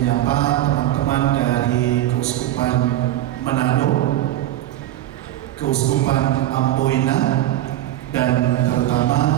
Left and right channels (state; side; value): quieter; left; 13.8 dB